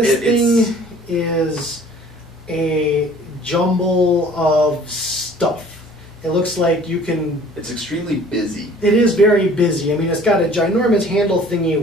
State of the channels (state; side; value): normal; both; correlation 0.51